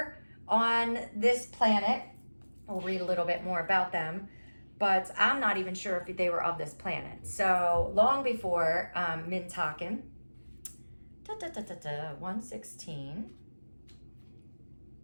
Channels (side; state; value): both; inverted; correlation -1.00